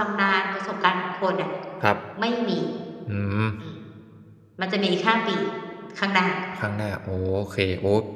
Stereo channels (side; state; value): both; identical; correlation 1.00